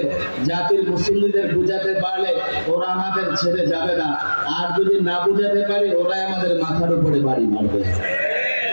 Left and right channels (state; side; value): inverted; both; correlation -1.00